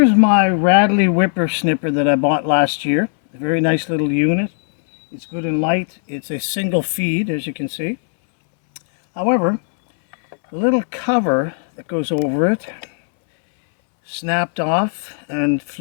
my Radley whippersnipper that I bought last year. A very nice little unit. It's good and light. It's a single feed, as you can see. However, the little cover that goes over it snapped off and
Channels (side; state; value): right; silent; 67 dB below the other